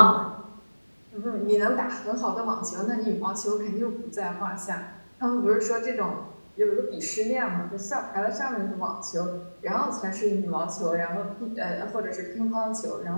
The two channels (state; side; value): inverted; both; correlation -1.00